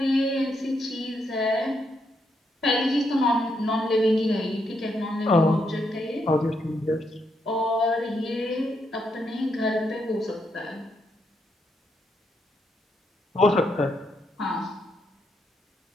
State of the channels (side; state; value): both; normal; correlation 0.79